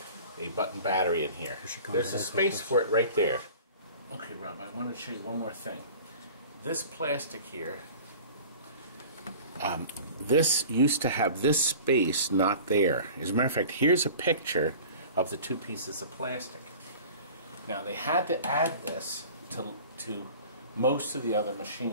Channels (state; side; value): inverted; both; correlation -0.41